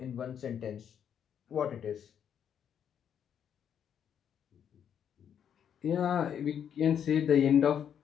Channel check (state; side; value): quieter; right; 8.6 dB